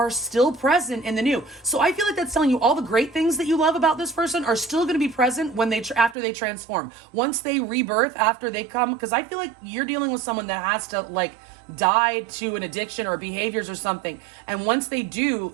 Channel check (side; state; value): left; drops out; at 6.2 s